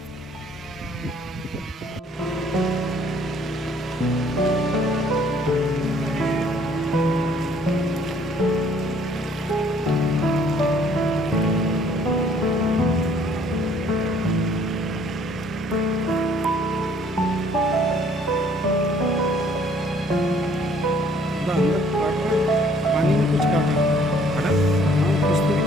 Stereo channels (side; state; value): both; normal; correlation 0.60